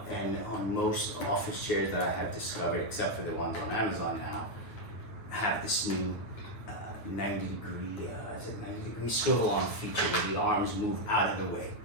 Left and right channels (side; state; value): right; late; 9.6 ms